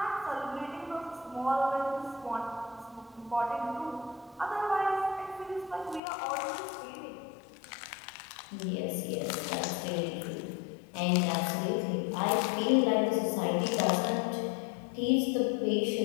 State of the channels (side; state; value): right; drops out; at 6.0 s